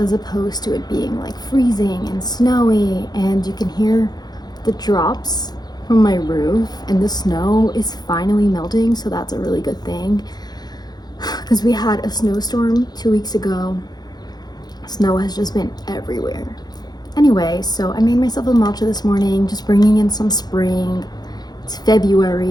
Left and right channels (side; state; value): right; late; 0.19 ms